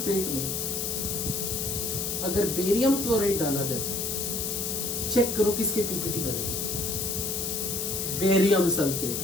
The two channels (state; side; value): noise; left; hiss, 2 dB below the sound